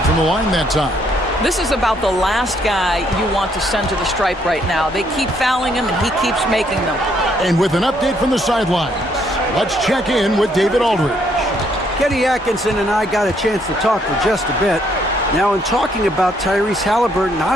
from the line that time. This is about the last guy you want to send to the stripe right now. They keep fouling him, and he keeps making them. And with an update from the sidelines, let's check in with David Aldridge. Kenny Atkinson and I got a chance to talk for just a bit. Now, in talking about Tyrese Halliburton, I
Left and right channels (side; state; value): both; normal; correlation 0.70